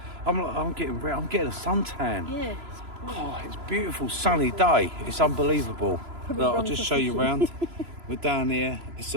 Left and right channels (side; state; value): left; late; 3.0 ms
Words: I'm getting a suntan. Yeah, It's beautiful sunny day. It's unbelievable. Look, I'll just show you around. We're down here. It's